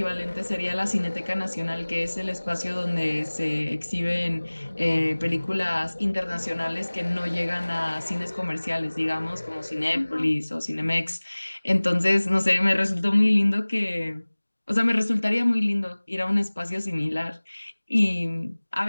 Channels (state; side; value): inverted; both; correlation -1.00